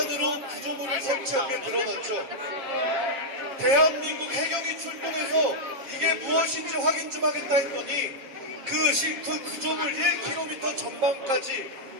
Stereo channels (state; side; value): late; left; 7.3 ms